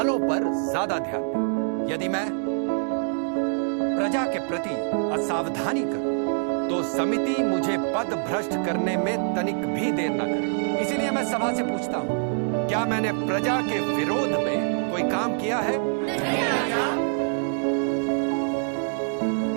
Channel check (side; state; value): left; silent; digital silence